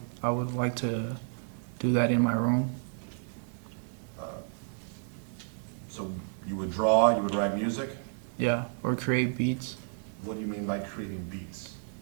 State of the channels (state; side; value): silent; left; digital silence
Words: like to do that in my room. So you would draw, you would write music? Yeah, or create beats. What do you mean by creating beats?